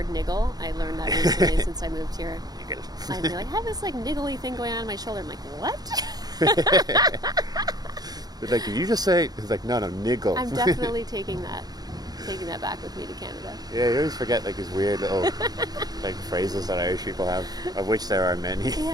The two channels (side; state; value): left; late; 0.19 ms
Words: niggle. I learned that recently since I moved here. Niggle. I'd be like, I have this like niggly thing going on in my shoulder. I'm like, what? But like, did you just say? It's like, no, niggle. I'm definitely taking that back with me to Canada. Yeah, you always forget like these weird little like phrases that Irish people have, of which there are many.